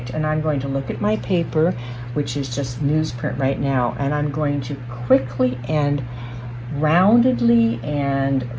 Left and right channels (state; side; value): identical; both; correlation 1.00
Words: and I'm going to look at my paper, which is just newsprint right now, and I'm going to quickly and roundedly and